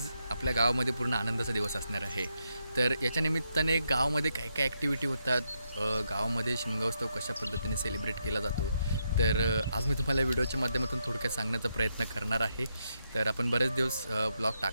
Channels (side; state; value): both; inverted; correlation -0.82